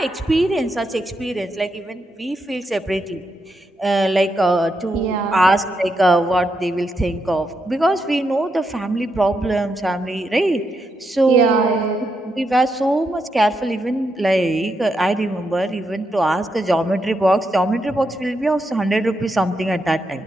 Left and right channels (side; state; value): both; normal; correlation 0.82